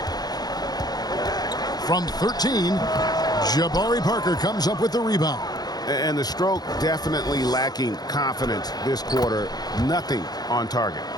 From 13, Jabari Parker comes up with the rebound. And the stroke definitely lacking confidence this quarter. Nothing on target.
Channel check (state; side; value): late; right; 0.19 ms